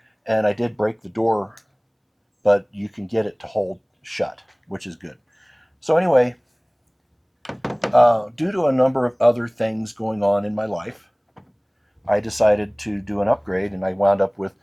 and I did break the door, but you can get it to hold shut, which is good. So anyway, due to a number of other things going on in my life, I decided to do an upgrade, and I wound up with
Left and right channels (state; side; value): identical; both; correlation 1.00